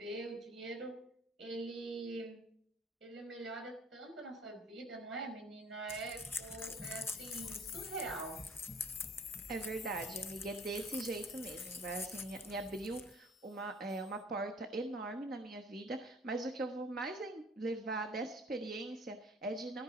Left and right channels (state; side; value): normal; both; correlation 0.52